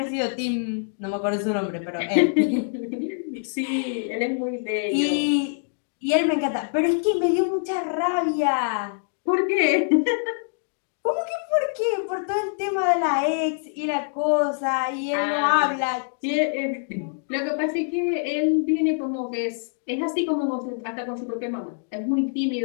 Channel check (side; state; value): right; silent; digital silence